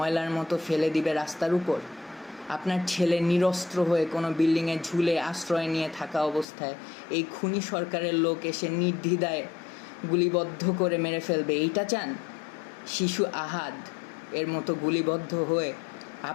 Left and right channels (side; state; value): right; drops out; at 6.5 s